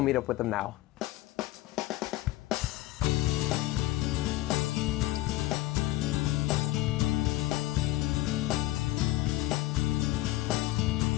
meet up with them now.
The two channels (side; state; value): right; quieter; 16.9 dB